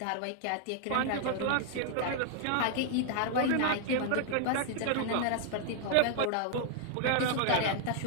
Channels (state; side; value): different; both; correlation 0.00